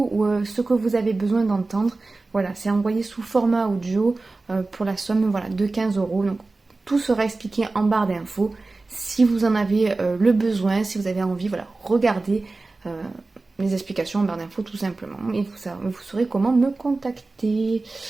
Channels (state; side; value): quieter; left; 3.4 dB